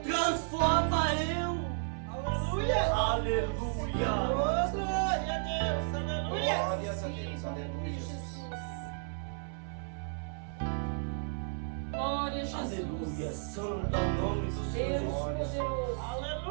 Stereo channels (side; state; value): left; silent; 56 dB below the other